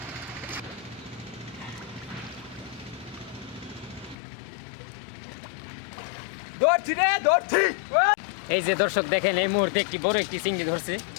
ধরছি। এই যে দর্শক দেখেন, এই মুহূর্তে একটি বড় একটি চিংড়ি ধরছে।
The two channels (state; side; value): drops out; right; at 4.2 s